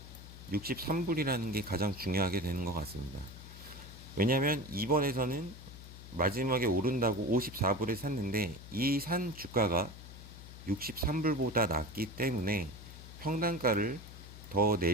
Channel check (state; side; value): noise; left; hum, 15 dB below the sound